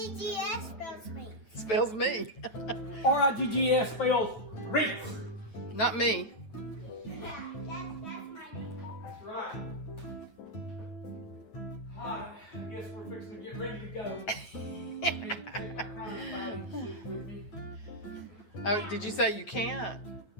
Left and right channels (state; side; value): late; right; 9.0 ms